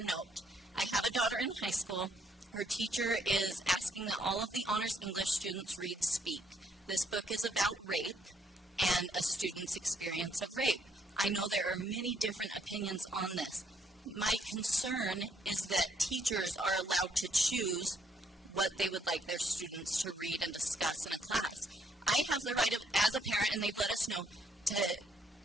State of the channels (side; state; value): both; normal; correlation 0.71